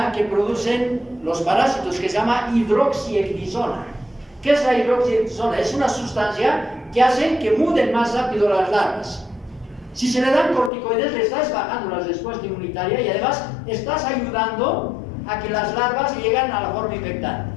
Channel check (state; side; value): drops out; right; at 10.7 s